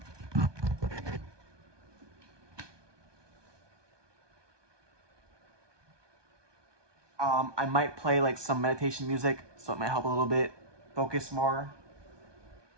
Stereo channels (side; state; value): left; late; 1.2 ms